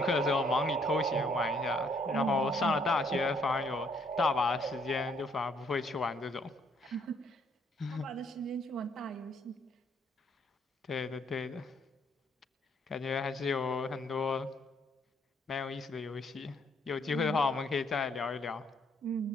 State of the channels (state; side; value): normal; both; correlation 0.67